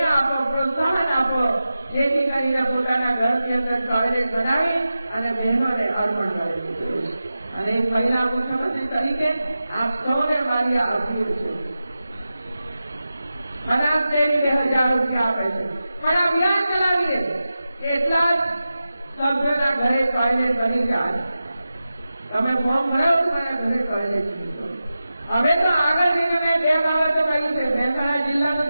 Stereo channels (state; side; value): inverted; both; correlation -0.93